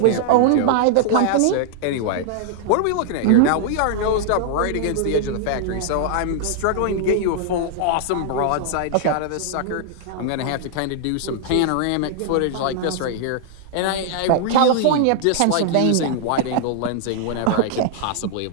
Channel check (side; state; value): both; different; correlation -0.01